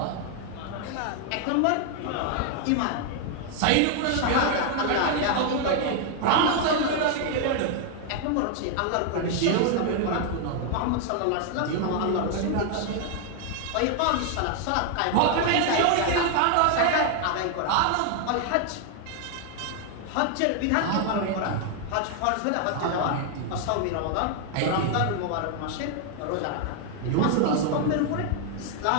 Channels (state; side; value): different; both; correlation 0.00